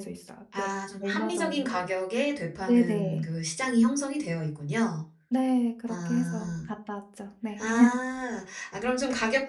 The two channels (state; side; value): identical; both; correlation 1.00